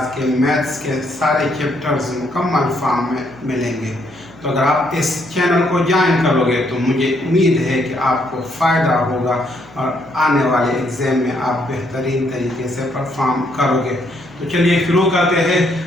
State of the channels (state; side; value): noise; left; hum, 25 dB below the sound